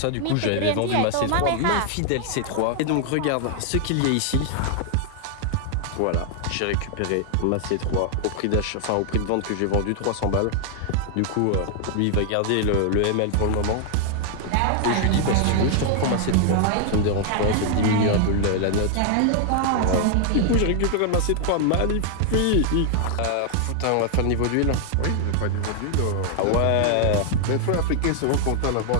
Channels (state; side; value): different; both; correlation 0.00